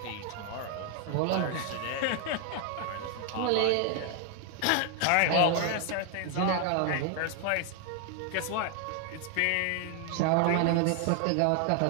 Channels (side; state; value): both; different; correlation 0.01